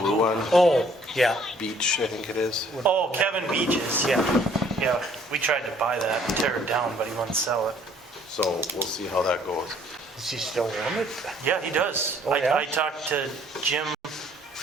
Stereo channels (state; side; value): normal; both; correlation 0.60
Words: one, Oh, yeah. beach, I think it is. Oh, Kevin Beaches, yeah. Yeah, we tried to buy that and tear it down, but he wouldn't sell it. So we'll see how that goes. Does he still own it? Yeah, he does. Oh, yeah? I talked to Jim